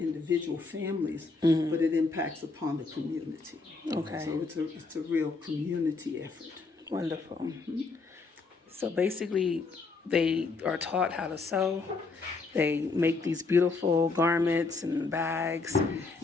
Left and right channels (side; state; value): right; quieter; 4.0 dB